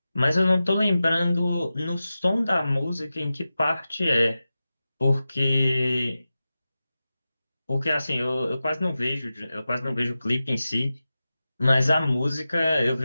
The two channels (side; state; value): both; inverted; correlation -0.94